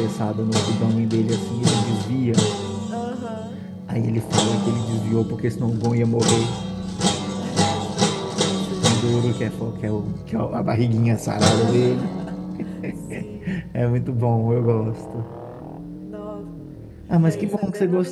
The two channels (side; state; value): both; identical; correlation 1.00